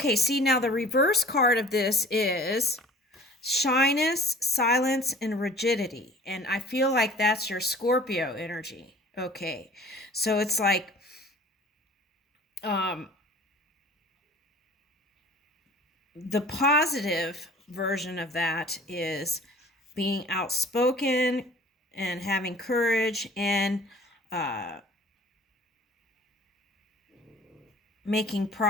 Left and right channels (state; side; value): normal; both; correlation 0.47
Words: see, now the reverse card of this is shyness, silence, and rigidity. And I feel like that's your Scorpio energy. Okay. So it's like the positive version of that is being outspoken and having courage and making